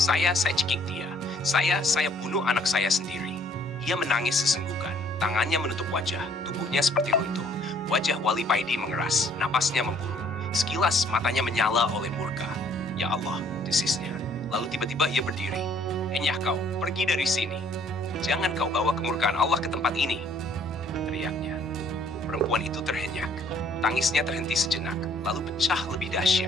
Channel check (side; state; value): both; normal; correlation 0.61